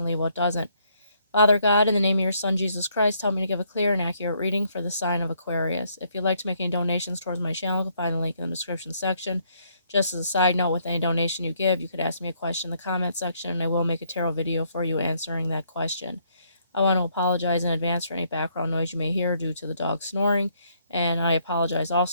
leave what doesn't. Father God, in the name of your Son, Jesus Christ, help me to give a clear and accurate reading for the sign of Aquarius. If you'd like to make any donations towards my channel, you can find the link in the description section. Just as a side note, with any donation you give, you could ask me a question in the comment section, and I will make a tarot video for you answering that question. I want to apologize in advance for any background noise you may hear due to the dog snoring. And I apologize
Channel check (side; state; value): both; inverted; correlation -0.70